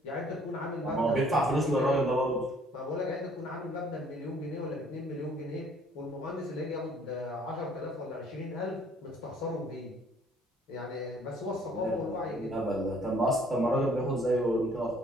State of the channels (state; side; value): normal; both; correlation 0.59